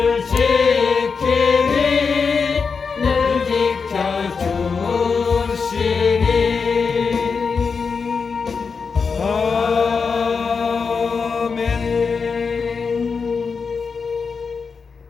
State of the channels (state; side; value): quieter; right; 5.3 dB